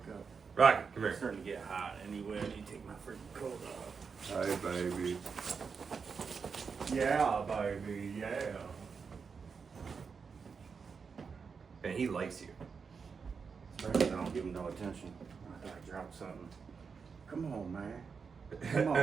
up. Rocket, come It's here. starting to get hot anyway. I need to take my freaking coat off. Hi, baby. Yeah, baby, yeah. And he likes you. Especially if I don't give him no attention. I thought I dropped something. Come on, man. Come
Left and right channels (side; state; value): left; quieter; 5.6 dB